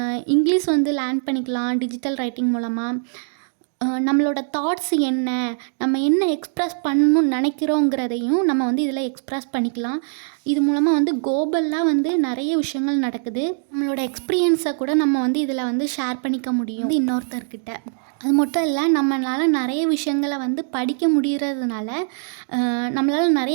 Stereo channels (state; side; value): silent; left; digital silence